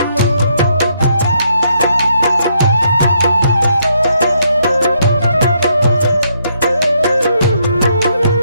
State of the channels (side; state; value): both; inverted; correlation -0.74